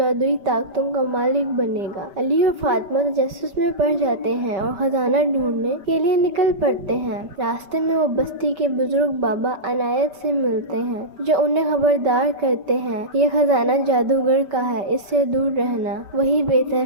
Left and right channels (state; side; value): late; left; 5.1 ms